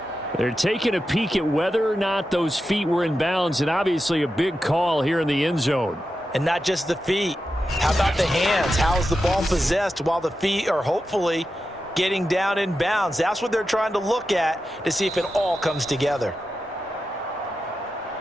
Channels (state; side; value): normal; both; correlation 0.90